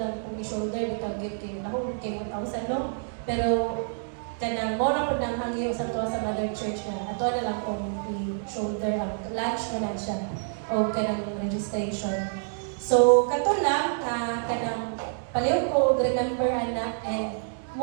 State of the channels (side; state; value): left; silent; digital silence